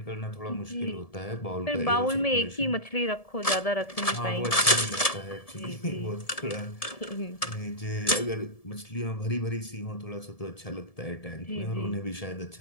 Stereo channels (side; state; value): right; late; 1.7 ms